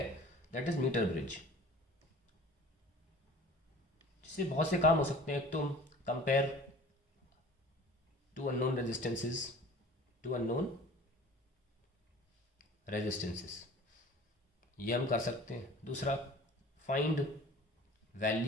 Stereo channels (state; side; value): normal; both; correlation 0.45